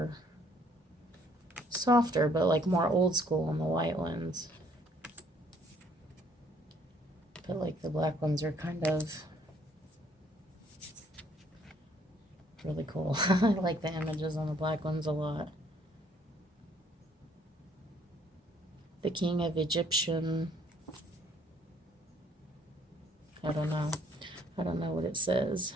softer, but like more old school on the white ones. But like the black ones are kind of really cool. I like the images on the black ones a lot. The King of Egyptian. I don't know what it says,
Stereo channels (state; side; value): normal; both; correlation 0.63